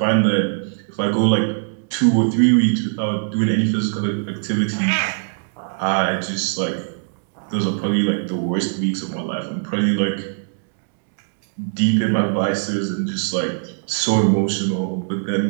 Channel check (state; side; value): silent; left; digital silence